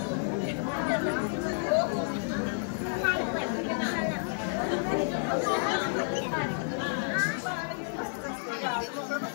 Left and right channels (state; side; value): silent; right; 57 dB below the other